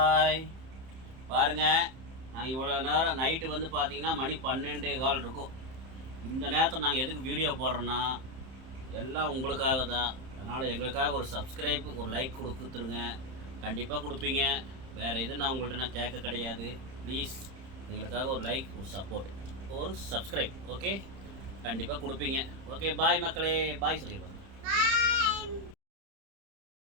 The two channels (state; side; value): late; left; 31 ms